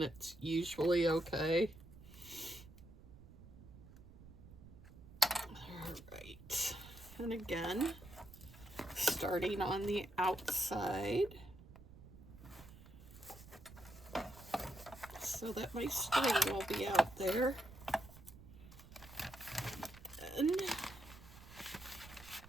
it's usually okay. Alright, and again, starting on the outside so that my string will be out there. And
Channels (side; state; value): right; noise; rumble, 18 dB below the sound